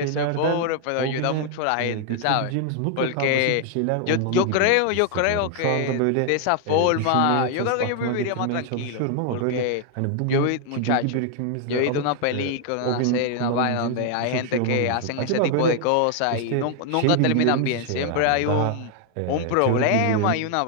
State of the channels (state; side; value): different; both; correlation 0.00